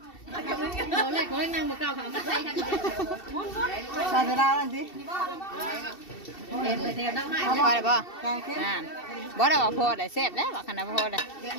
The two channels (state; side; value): late; right; 2.7 ms